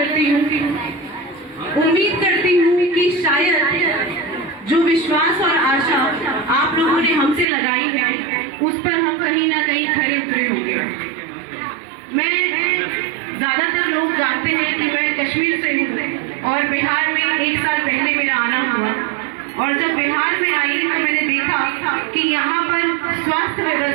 हूँ। उम्मीद करती हूँ कि शायद जो विश्वास और आशा आप लोगों ने हमसे लगाई है उस पर हम कहीं ना कहीं खरे उतरे होंगे। मैं, ज्यादातर लोग जानते हैं कि मैं कश्मीर से हूँ और बिहार में 1 साल पहले मेरा आना हुआ। और जब बिहार में आई तो मैंने देखा कि यहाँ पर स्वास्थ्य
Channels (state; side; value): drops out; left; at 7.5 s